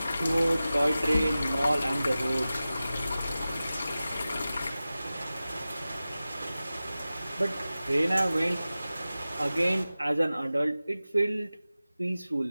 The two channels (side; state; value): both; inverted; correlation -0.96